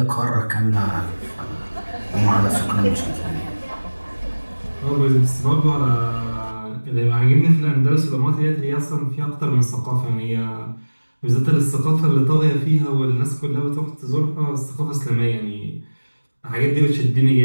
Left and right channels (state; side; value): inverted; both; correlation -1.00